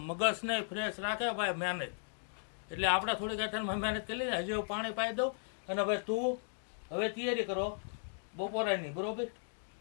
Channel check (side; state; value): right; silent; digital silence